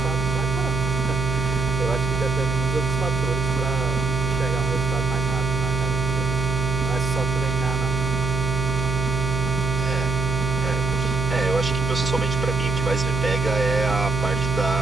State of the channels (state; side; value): noise; right; hum, 1 dB below the sound